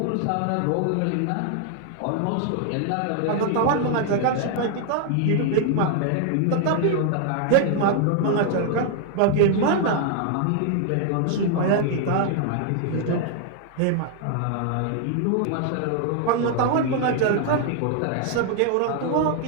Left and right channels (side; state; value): both; different; correlation 0.00